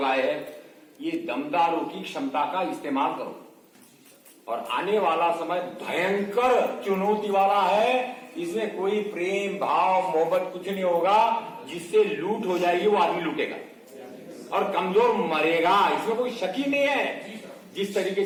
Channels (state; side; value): identical; both; correlation 1.00